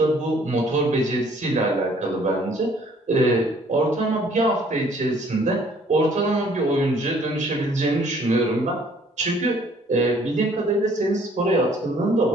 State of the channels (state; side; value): normal; both; correlation 0.59